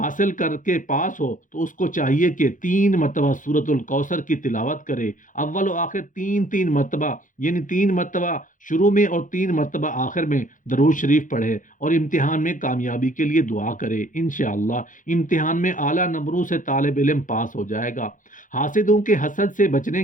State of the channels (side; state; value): right; late; 0.38 ms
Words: کر کے پاس ہو تو اس کو چاہیے کہ 3 مرتبہ سورۃ الکوثر کی تلاوت کرے، اول و آخر 3 مرتبہ، یعنی 3 مرتبہ شروع میں اور 3 مرتبہ آخر میں درود شریف پڑھے اور امتحان میں کامیابی کے لیے دعا کرے، انشاءاللہ امتحان میں اعلیٰ نمبروں سے طالب علم پاس ہو جائے گا۔ حاسدوں کے حسد سے بچنے